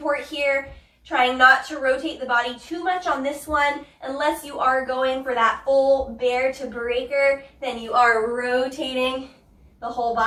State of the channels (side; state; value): both; identical; correlation 1.00